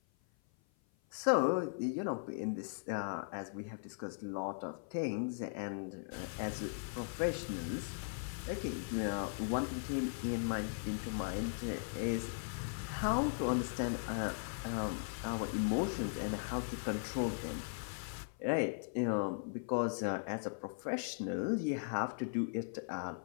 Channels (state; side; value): silent; right; 52 dB below the other